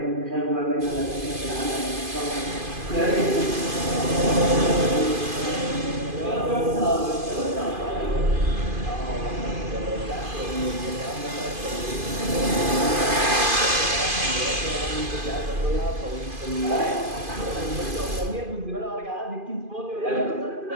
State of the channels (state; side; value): late; left; 2.5 ms